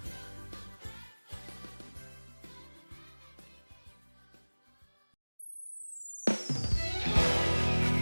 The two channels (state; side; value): inverted; both; correlation -1.00